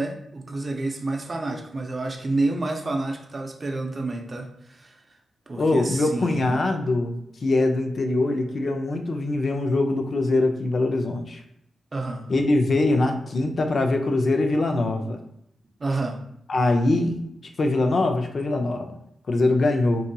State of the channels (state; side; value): normal; both; correlation 0.91